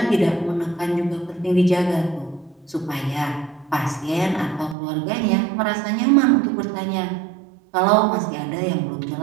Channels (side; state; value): left; drops out; at 4.8 s